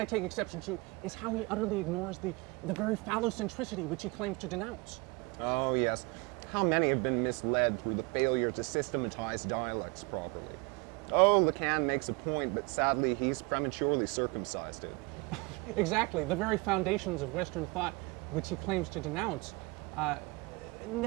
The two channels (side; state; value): left; quieter; 27.1 dB